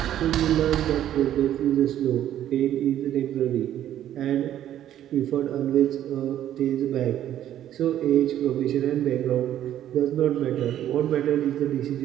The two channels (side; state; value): left; quieter; 11.6 dB